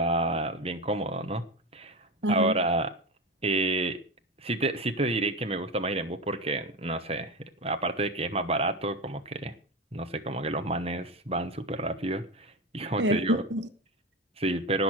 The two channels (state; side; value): normal; both; correlation 0.20